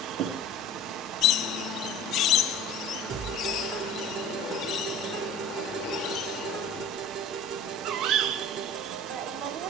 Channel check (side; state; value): both; normal; correlation 0.40